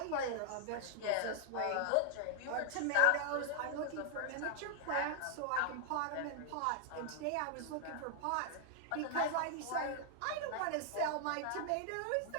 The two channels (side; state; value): both; different; correlation 0.00